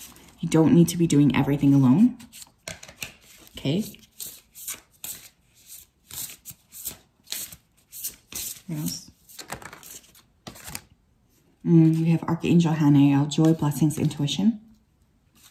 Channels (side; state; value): both; identical; correlation 1.00